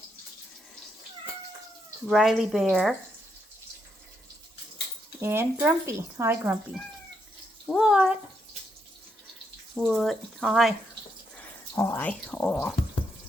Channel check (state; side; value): normal; both; correlation 0.79